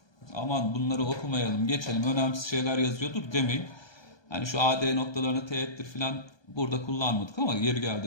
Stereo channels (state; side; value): late; right; 1.2 ms